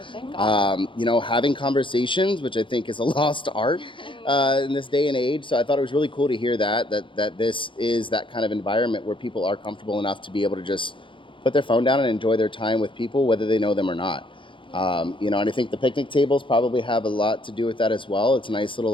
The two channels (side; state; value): right; late; 0.24 ms